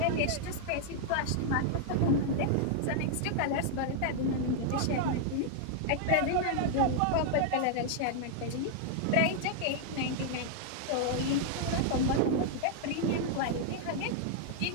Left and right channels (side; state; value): both; different; correlation -0.01